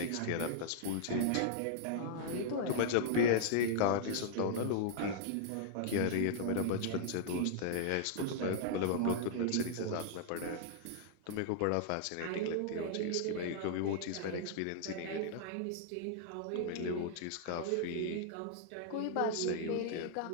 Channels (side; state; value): both; different; correlation -0.01